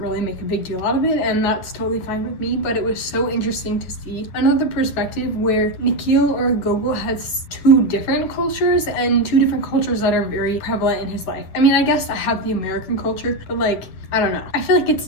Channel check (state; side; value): late; right; 10 ms